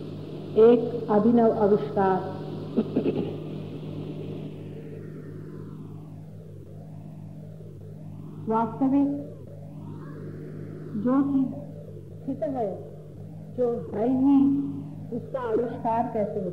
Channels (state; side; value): identical; both; correlation 1.00